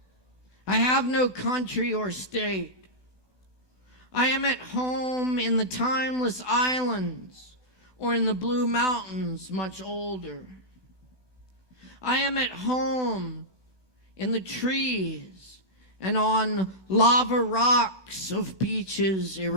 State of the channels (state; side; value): late; left; 1.2 ms